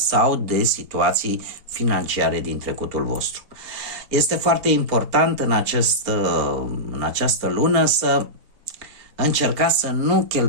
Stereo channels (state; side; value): late; left; 4.1 ms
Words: de situații financiare din trecutul vostru. Este foarte important în această lună să încercați să nu